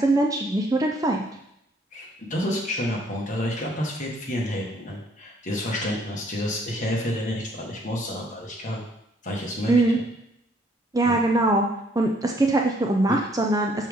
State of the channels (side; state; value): both; normal; correlation 0.64